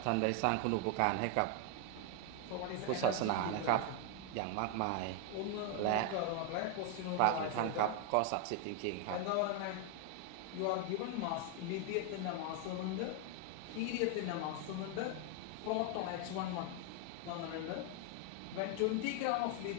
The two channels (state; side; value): different; both; correlation 0.01